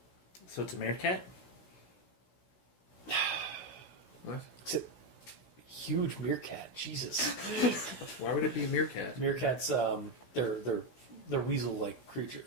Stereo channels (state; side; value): late; right; 16 ms